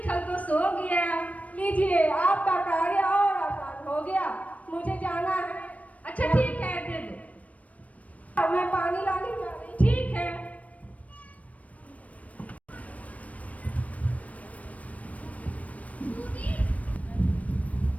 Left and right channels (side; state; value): right; late; 0.068 ms